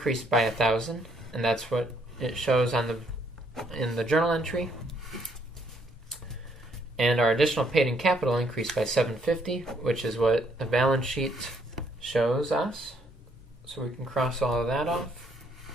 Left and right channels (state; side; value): normal; both; correlation 0.69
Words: by 1,000, and that's what it shows in the journal entry. And our additional paid-in capital increased by $750, which is what the balance sheet shows us. So we can cross all of that off.